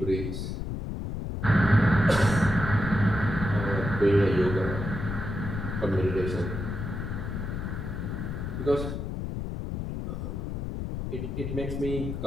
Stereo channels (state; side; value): noise; left; rumble, 4 dB below the sound